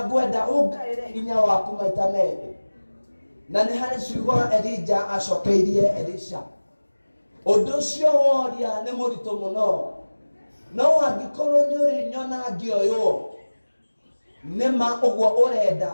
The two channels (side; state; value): both; inverted; correlation -1.00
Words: ngwenda ũngaĩre hinya waku maita merĩ. na nĩ harĩ ciugo Elija acokeirie Elisha. Ũndũ ũcio woria nĩ mũritũ mũno, no angĩkorwo nĩ ũrĩ nyona ngĩoywo nĩma ũguo ũrenda